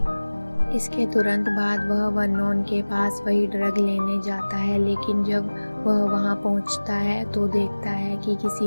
इसके तुरंत बाद वह वर्नोन के पास वही ड्रग लेने जाता है, लेकिन जब वह वहां पहुंचता है तो देखता है कि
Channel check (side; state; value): both; inverted; correlation -1.00